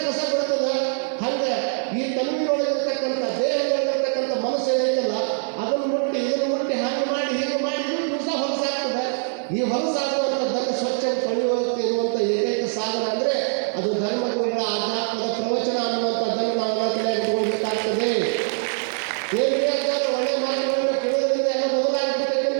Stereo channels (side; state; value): left; silent; 63 dB below the other